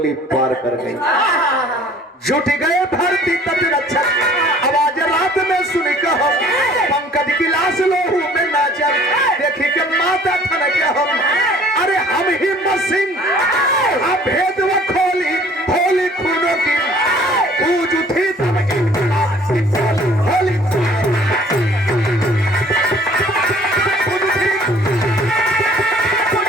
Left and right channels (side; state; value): both; normal; correlation 0.53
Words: पार कर गई। जुट गए भारतीय तट रक्षक, आवाज रात में सुनी कहो, पंकज की लाश लोहू में नाचल, देखी के माता थन के हम, अरे हम हिम्मत सिंह भेद व खोली होली खूनों की, गूंज उठी तब इनकलाब की होली